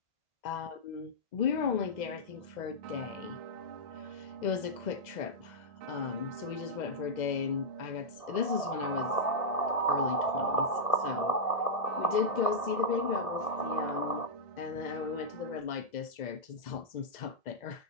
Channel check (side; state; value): right; late; 2.0 ms